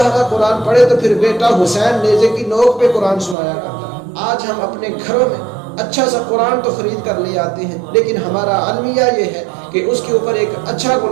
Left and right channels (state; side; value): drops out; left; at 3.4 s